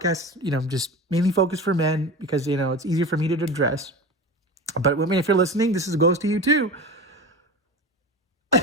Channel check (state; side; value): normal; both; correlation 0.30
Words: just mainly focused for men because it's easier for me to address. But women, if you're listening, this goes to you too.